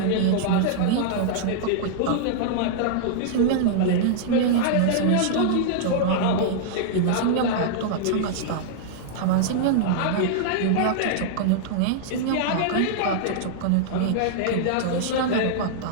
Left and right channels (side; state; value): both; different; correlation -0.01